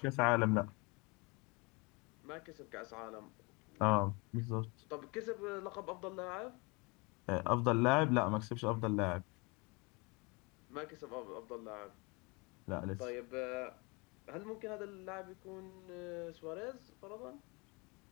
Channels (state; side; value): quieter; right; 28.4 dB